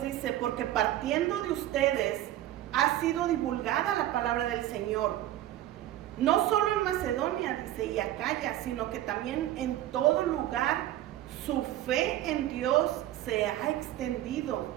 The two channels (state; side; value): quieter; left; 13.6 dB